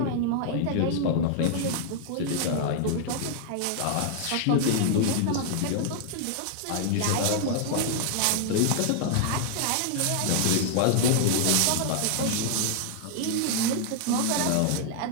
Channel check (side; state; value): both; different; correlation -0.01